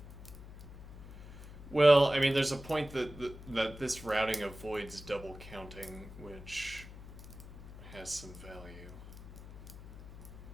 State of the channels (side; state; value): left; noise; hum, 14 dB below the sound